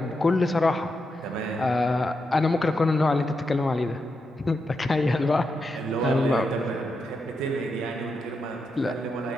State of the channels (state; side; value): normal; both; correlation 0.85